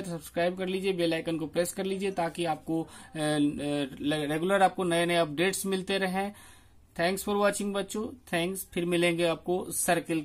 तो सब्सक्राइब कर लीजिए, बेल आइकन को प्रेस कर लीजिए ताकि आपको रेगुलर आपको नए नए अपडेट्स मिलते रहें। थैंक्स फॉर वॉचिंग बच्चों, थैंक्स। फिर मिलेंगे आपको सर्किल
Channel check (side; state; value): both; identical; correlation 1.00